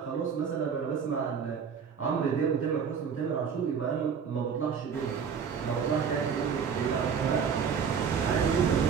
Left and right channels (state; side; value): quieter; left; 6.7 dB